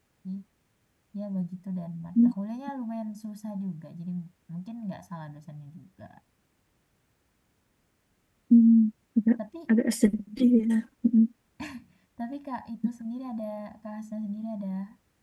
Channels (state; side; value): identical; both; correlation 1.00